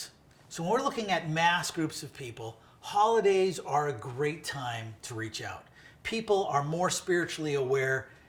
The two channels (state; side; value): identical; both; correlation 1.00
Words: So when we're looking at mass groups of people, holidays are a great time to reach out. People are more spiritually aware